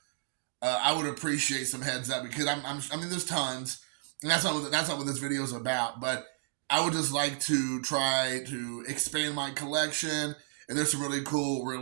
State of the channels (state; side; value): silent; left; digital silence